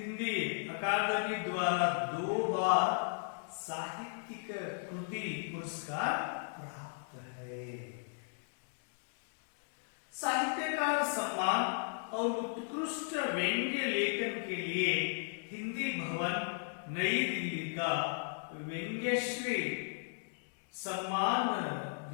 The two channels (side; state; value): right; silent; digital silence